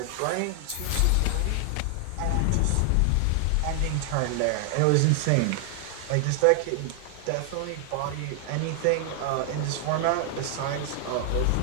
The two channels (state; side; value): different; both; correlation 0.00